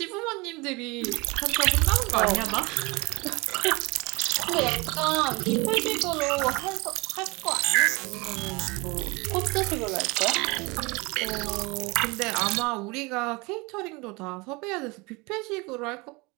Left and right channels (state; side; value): quieter; left; 25.8 dB